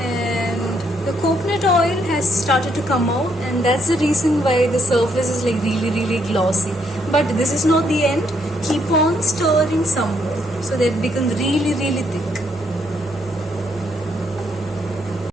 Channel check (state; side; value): normal; both; correlation 0.73